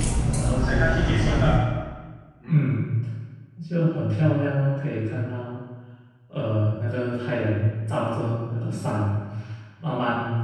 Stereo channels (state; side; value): identical; both; correlation 1.00